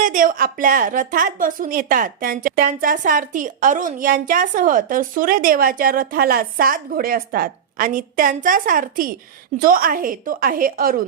आपल्या रथात बसून येतात. त्यांचा सारथी अरुण यांच्यासह. तर सूर्यदेवाच्या रथाला 7 घोडे असतात आणि त्यांचा सारथी जो आहे तो आहे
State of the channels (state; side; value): quieter; left; 7.8 dB